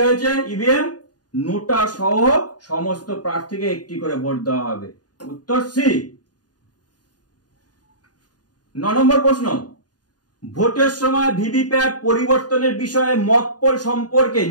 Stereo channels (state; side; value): late; right; 0.69 ms